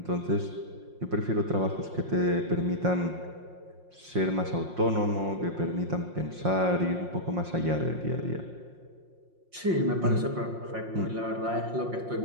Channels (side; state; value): left; late; 5.6 ms